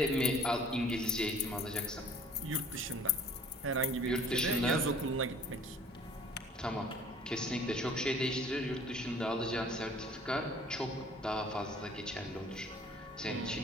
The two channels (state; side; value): normal; both; correlation 0.51